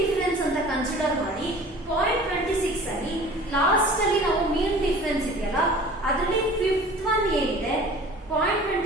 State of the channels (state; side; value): normal; both; correlation 0.44